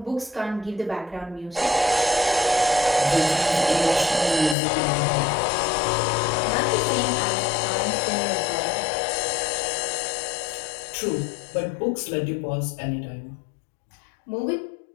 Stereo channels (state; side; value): drops out; right; at 4.5 s